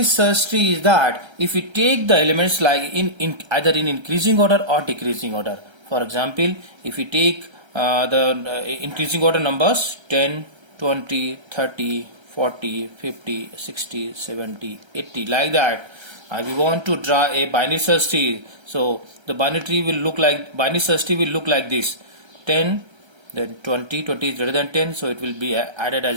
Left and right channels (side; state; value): left; late; 1.3 ms